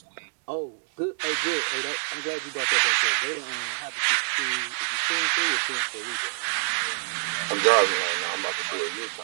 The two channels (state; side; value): silent; left; digital silence